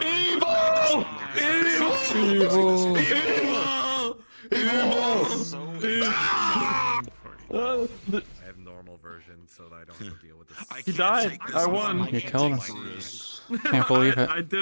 Evil! Evil! I have normal version so that I don't have to deal with this. He died. I won. You killed him. Can't believe it. I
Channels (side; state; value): both; inverted; correlation -1.00